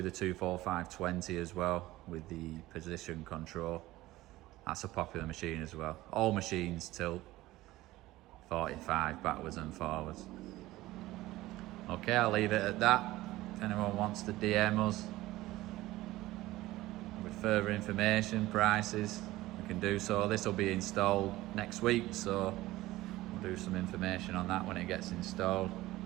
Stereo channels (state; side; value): quieter; left; 17.4 dB